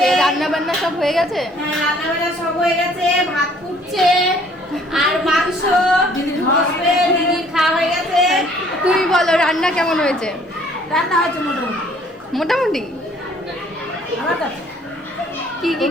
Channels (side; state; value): both; normal; correlation 0.59